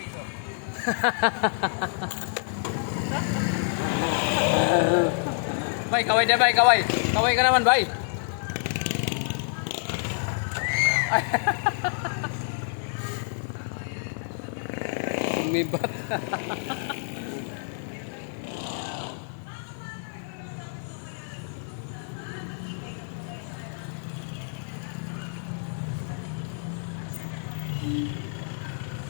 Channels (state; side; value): silent; right; 59 dB below the other